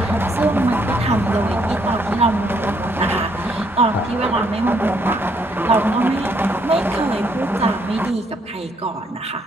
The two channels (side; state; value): both; normal; correlation 0.70